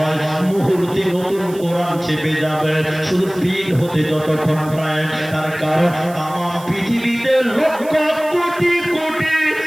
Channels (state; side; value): noise; right; hiss, 20 dB below the sound